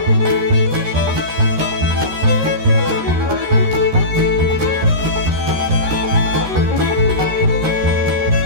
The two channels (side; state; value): left; late; 13 ms